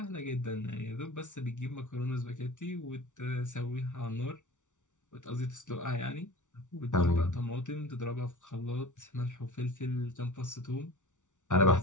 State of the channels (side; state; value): right; late; 0.86 ms